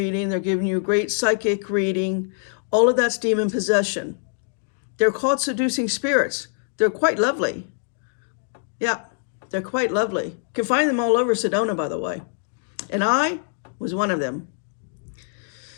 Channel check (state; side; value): silent; right; 63 dB below the other